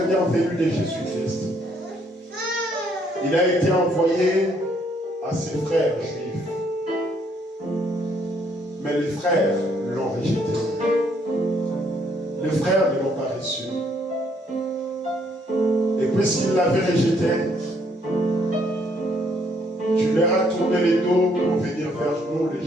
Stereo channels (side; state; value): both; normal; correlation 0.68